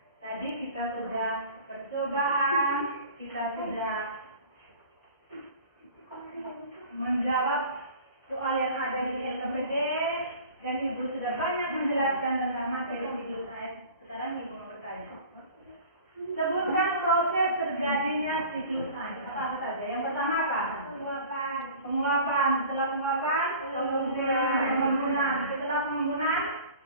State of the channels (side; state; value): both; inverted; correlation -0.43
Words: Tadi kita sudah percobaan, kita sudah menjawab soal yang ada di LKPD, dan ibu sudah banyak menjelaskan tentang materi siklus air. Sekarang ibu mau bertanya. Sebutkan proses terjadinya siklus air. Apa saja? Yang pertama apa? Penguapan. Setelah penguapan, pengembunan. Setelah pengembunan,